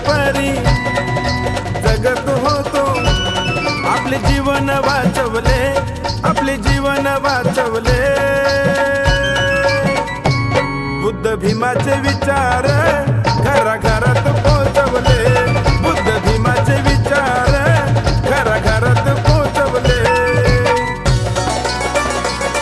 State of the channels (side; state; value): both; identical; correlation 1.00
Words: परी जगत होतो, आपले जीवन वाचवले, आपले जीवन वाचवले। बुद्ध भीमाचे विचार घराघरात पोचवले, बुद्ध भीमाचे विचार घराघरात पोचवले।